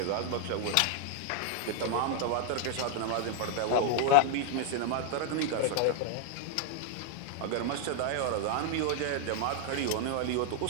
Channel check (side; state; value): both; different; correlation 0.00